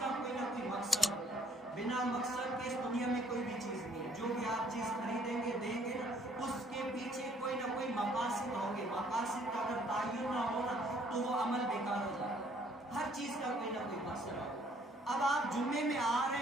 کوئی نہ کوئی مقصد ہوتا ہے۔ بنا مقصد کے اس دنیا میں کوئی بھی چیز نہیں ہے۔ جو بھی آپ چیز خریدیں گے دیں گے نا، اس کے پیچھے کوئی نہ کوئی مقاصد ہوں گے۔ مقاصد کا اگر تعین نہ ہو نا تو وہ عمل بیکار ہو جاتا ہے۔ ہر چیز کا کوئی نہ کوئی مقصد ہوگا۔ اب آپ جمعے میں آ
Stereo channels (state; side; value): normal; both; correlation 0.63